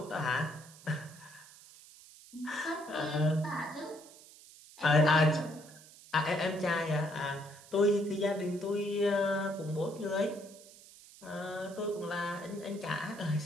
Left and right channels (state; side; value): noise; right; hiss, 21 dB below the sound